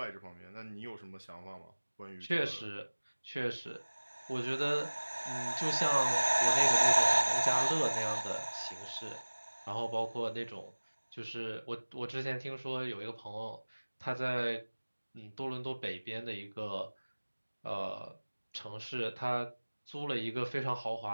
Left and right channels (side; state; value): both; inverted; correlation -1.00